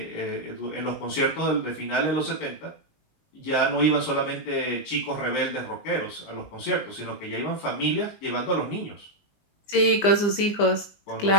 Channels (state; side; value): late; right; 20 ms